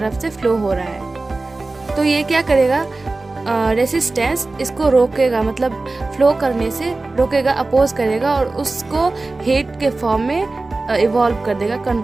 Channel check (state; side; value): quieter; left; 3.3 dB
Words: से फ्लो हो रहा है। तो ये क्या करेगा, रेसिस्टेंस इसको रोकेगा, मतलब फ्लो करने से रोकेगा, अपोज करेगा और उसको हीट के फॉर्म में इवॉल्व कर देगा,